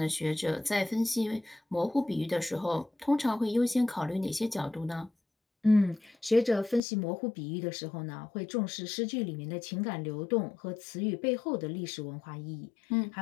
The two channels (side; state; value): right; drops out; at 6.8 s